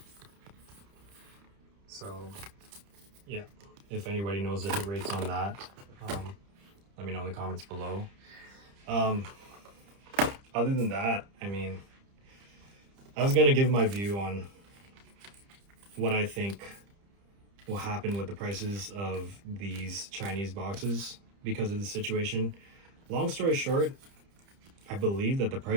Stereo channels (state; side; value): late; left; 30 ms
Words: So yeah, if anybody knows the hit rates on that, let me know in the comments below. Other than that, I mean, I was gonna give my view on what I think will happen with the prices of these Chinese boxes because of the situation. Long story short, I believe that the